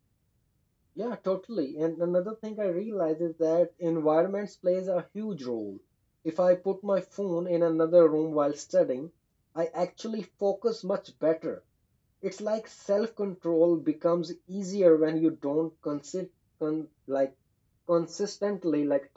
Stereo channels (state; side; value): identical; both; correlation 1.00